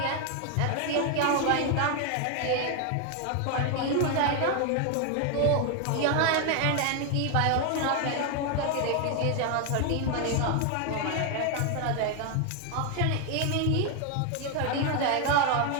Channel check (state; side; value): different; both; correlation 0.01